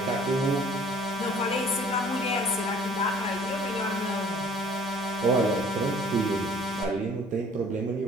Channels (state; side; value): normal; both; correlation 0.53